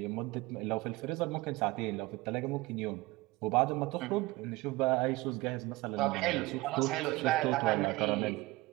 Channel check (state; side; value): quieter; left; 20.8 dB